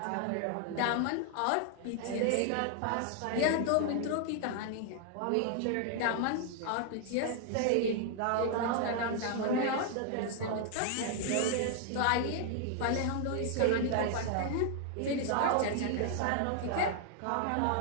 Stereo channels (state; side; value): different; both; correlation 0.00